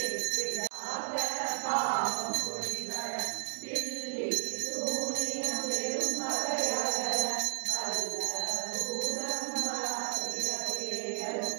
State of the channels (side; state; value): left; silent; digital silence